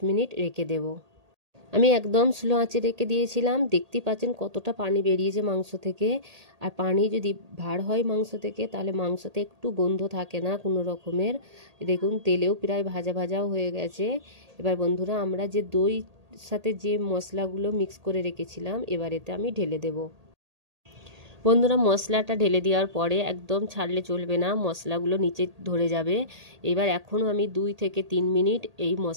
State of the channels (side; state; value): left; late; 1.8 ms